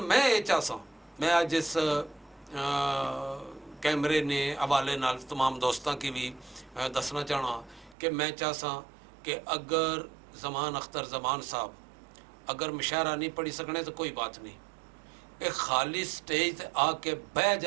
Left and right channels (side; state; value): left; drops out; at 8.0 s